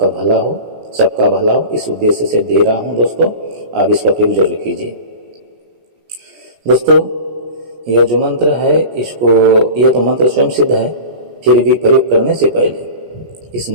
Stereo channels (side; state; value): left; late; 17 ms